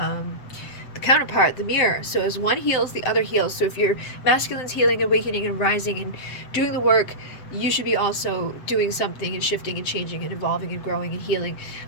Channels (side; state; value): right; late; 7.9 ms